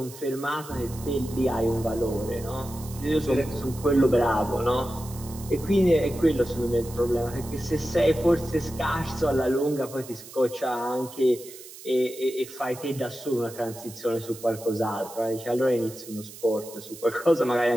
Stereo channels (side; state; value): right; noise; hiss, 16 dB below the sound